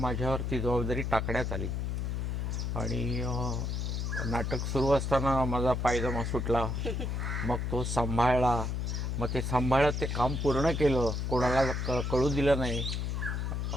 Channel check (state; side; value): noise; left; hum, 1 dB below the sound